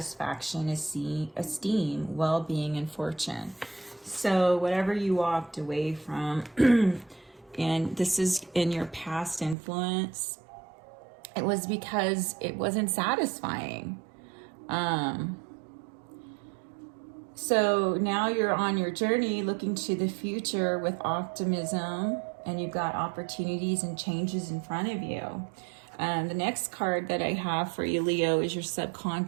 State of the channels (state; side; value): drops out; left; at 9.6 s